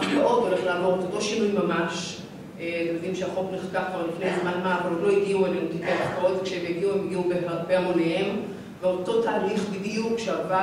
הולך לעבור את אותו שינוי ממש. אתם יודעים שהחוק נחקק כבר לפני זמן מה, אבל עוד לא הגיעו אלינו תיקי ההפקעות, וכשהם הגיעו הם הגיעו בהמוניהם, ואותו תהליך בדיוק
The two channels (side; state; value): both; identical; correlation 1.00